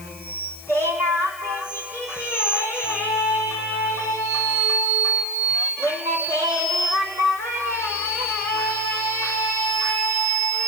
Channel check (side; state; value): left; noise; hiss, 17 dB below the sound